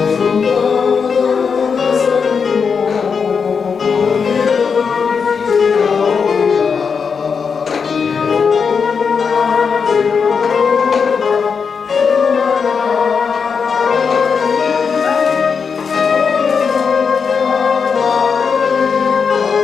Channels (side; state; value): right; quieter; 5.9 dB